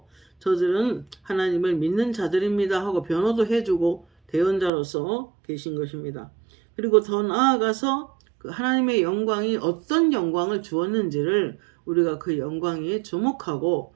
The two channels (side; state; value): left; drops out; at 4.7 s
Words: 저들은 하나님을 믿는 자들입니다 하고 변호도 해주고 대언자로서 계신 것입니다. 그리고 더 나아가서 그 하나님의 영광이 어떤 영광을 주었는지를 우리가 그 영광에 주목하고